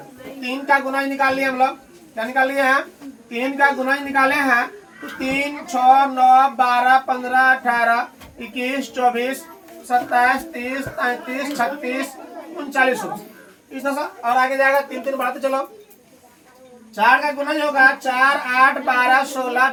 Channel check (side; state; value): both; identical; correlation 1.00